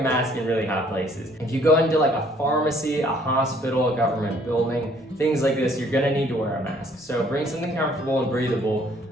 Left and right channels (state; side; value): normal; both; correlation 0.61